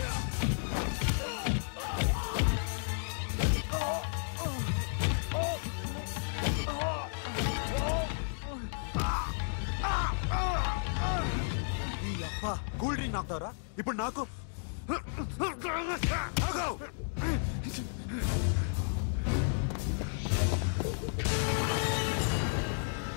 కూల్ డ్రింక్ నాకుతారా ఇప్పుడు? నాకు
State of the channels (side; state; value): right; silent; digital silence